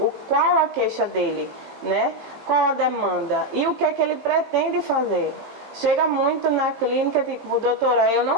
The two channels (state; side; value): late; left; 18 ms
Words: Qual a queixa dele, né? Qual a demanda? E o que é que ele pretende fazer? Chega muito na clínica, tipo, doutora, eu